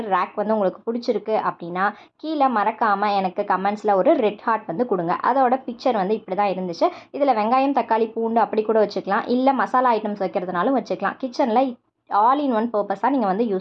ரேக் வந்து உங்களுக்கு பிடிச்சிருக்கு அப்படின்னா கீழே மறக்காமல் எனக்கு கமெண்ட்ஸில் ஒரு ரெட் ஹார்ட் வந்து கொடுங்க. அதோட பிக்சர் வந்து இப்படி தான் இருந்துச்சு. இதில் வெங்காயம், தக்காளி, பூண்டு அப்படி கூட வச்சுக்கலாம். இல்லை மசாலா ஐட்டம்ஸ் வைக்கிறதுனாலும் வச்சுக்கலாம். கிச்சனில் ஆல் இன் ஒன் பர்பஸாக நீங்கள் வந்து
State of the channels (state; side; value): identical; both; correlation 1.00